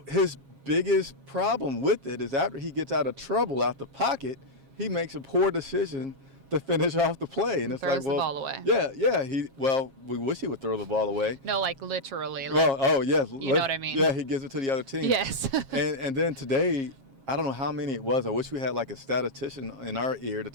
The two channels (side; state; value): left; late; 7.4 ms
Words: his biggest problem with it is after he gets out of trouble out the pocket, he makes a poor decision to finish off the play, and it's throws like, well, the ball away. Yeah. We wish he would throw the ball away. No, like literally. Yes. You know what I mean? Yeah, he gives it to the other team. Yes. and then today, I don't know how many it was. I wish we had like a statistician in our ear to